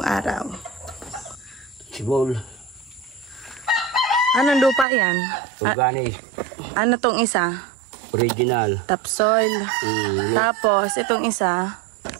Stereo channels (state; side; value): drops out; left; at 4.9 s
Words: araw. Sibol. Anong lupa yan? Organic. Ano tong isa? Original. Topsoil. Tapos, itong isa?